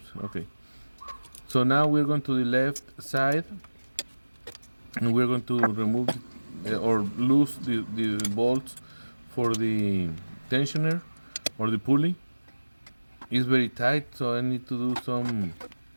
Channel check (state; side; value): inverted; both; correlation -1.00